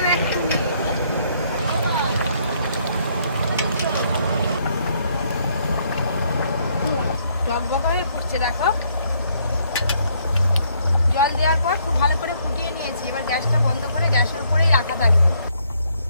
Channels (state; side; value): inverted; both; correlation -0.69